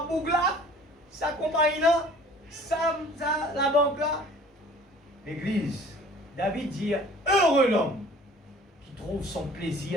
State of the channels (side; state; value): both; normal; correlation 0.50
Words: boucle là, ça compagnie là, ça la banque là. L'église, David dit, heureux l'homme qui trouve son